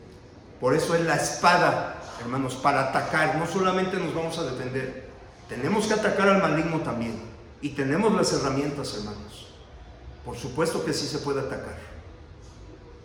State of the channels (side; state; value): both; identical; correlation 1.00